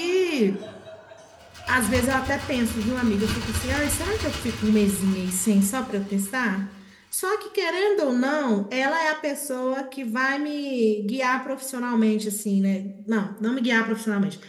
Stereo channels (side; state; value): both; identical; correlation 1.00